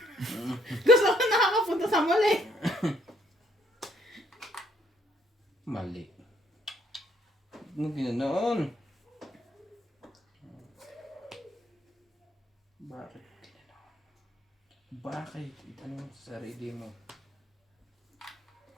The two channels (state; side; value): normal; both; correlation 0.68